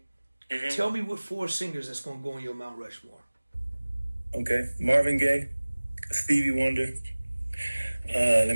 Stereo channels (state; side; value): inverted; both; correlation -1.00